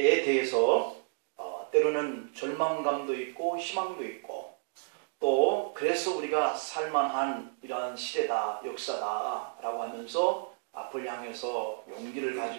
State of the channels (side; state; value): left; silent; digital silence